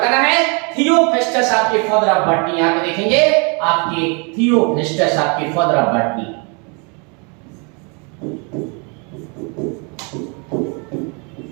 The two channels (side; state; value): left; quieter; 34.2 dB